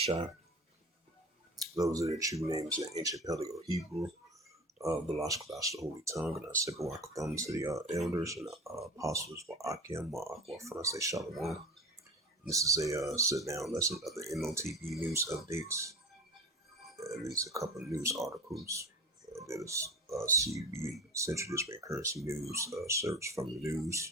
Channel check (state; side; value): normal; both; correlation 0.33